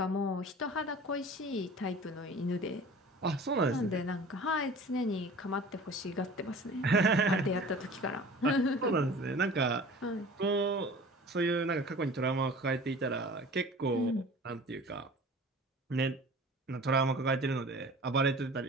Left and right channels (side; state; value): both; normal; correlation 0.42